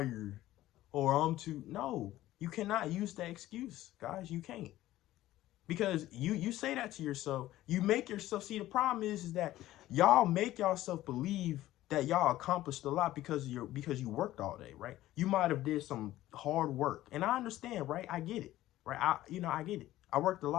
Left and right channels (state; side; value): quieter; right; 15.1 dB